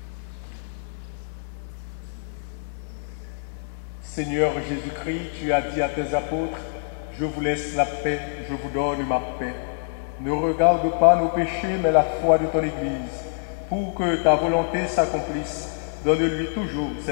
Seigneur Jésus-Christ, tu as dit à tes apôtres, « Je vous laisse la paix, je vous donne ma paix. Ne regarde pas nos péchés, mais la foi de ton Église. Pour que ta volonté s'accomplisse, donne-lui toujours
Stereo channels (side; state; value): right; silent; 58 dB below the other